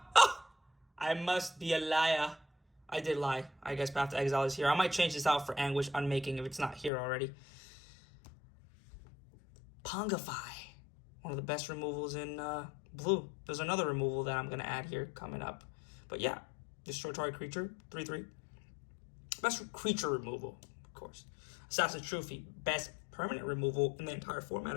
I must be a liar. I did lie. I guess Path to Exile is here. I might change this out for Anguish Unmaking if it's not here already. Pongify. One of the best removals in blue. There's another removal that I'm going to add here coming up. But yeah, destroy target creature, 3/3. Best creature removal, of course. Assassin's Trophy, best permanent removal in the entire format,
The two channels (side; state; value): right; drops out; at 6.9 s